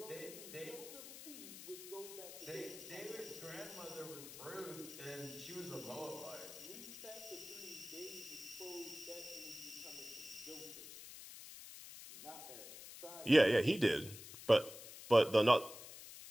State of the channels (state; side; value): noise; left; hiss, 13 dB below the sound